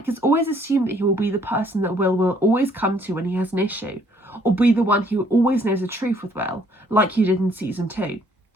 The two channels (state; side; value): normal; both; correlation 0.63